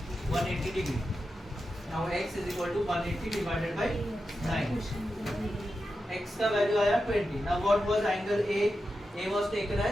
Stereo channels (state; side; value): normal; both; correlation 0.90